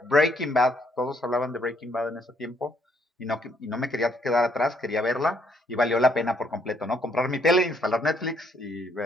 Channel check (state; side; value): normal; both; correlation 0.69